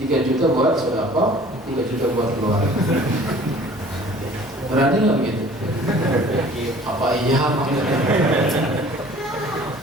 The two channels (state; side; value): normal; both; correlation 0.50